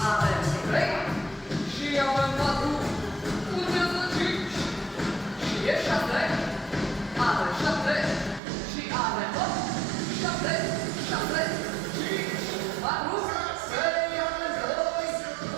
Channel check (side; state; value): left; drops out; at 8.4 s